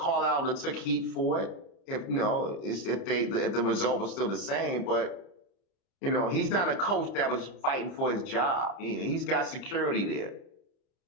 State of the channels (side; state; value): right; late; 30 ms